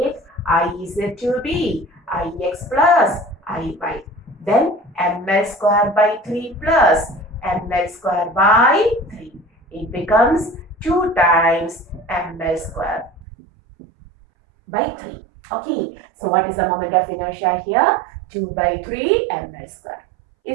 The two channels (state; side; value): drops out; left; at 13.2 s